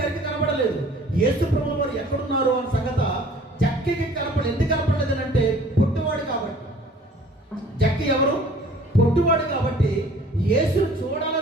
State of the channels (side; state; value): both; normal; correlation 0.52